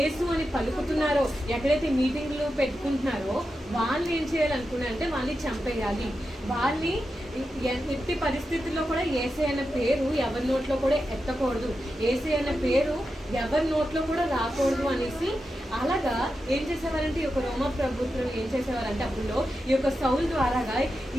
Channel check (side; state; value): both; normal; correlation 0.89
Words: అని పలుకుతున్నారో, ఎక్కడైతే మీటింగ్లు పెట్టుకుంటున్నారో వాళ్ళు ఏం చేయాలనుకున్నారంటే వాళ్ళని చంపేయాలి. వాళ్ళని ఎట్టి పరిస్థితుల్లో కూడా యేసే అన్న పేరు ఎవరి నోట్లో కూడా ఎత్తకూడదు, యేసే అన్న పేరు ఎవరి నోట్లో కూడా రాకూడదు అనేసి అలాగా ఏం చేసేవారంటే ఈ యొక్క రోమా ప్రభుత్వం ఏం చేసేవారంటే అప్పుడు ఈ యొక్క సౌల్ ద్వారాగా